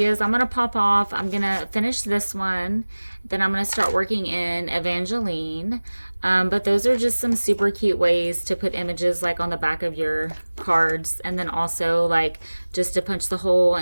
I'm going to pop off. I'm going to finish this one. Then I'm going to start working in Evangeline. But those are just some super cute ways to put images like on the back of your cards. And then also like just to punch the hole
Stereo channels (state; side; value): inverted; both; correlation -1.00